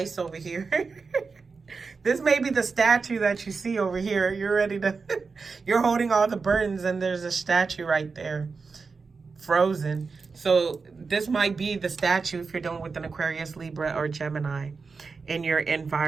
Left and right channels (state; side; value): quieter; left; 4.7 dB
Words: over here. This may be the statue that you see over here. You're ready to, you're holding all the burdens and there's a statue right there, frozen. So this might be the statue if you're dealing with an Aquarius, Libra, or Gemini in your